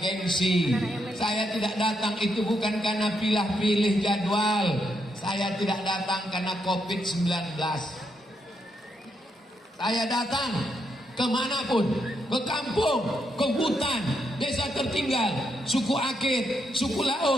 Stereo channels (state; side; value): normal; both; correlation 0.79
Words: gengsi. Saya tidak datang itu bukan karena pilih-pilih jadwal. Saya tidak datang karena COVID-19. Saya datang kemanapun, ke kampung, ke hutan, desa tertinggal, suku Akit, suku